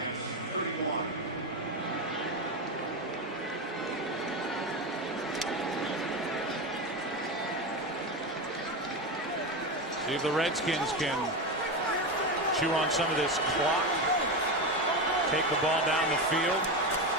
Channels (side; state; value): both; normal; correlation 0.17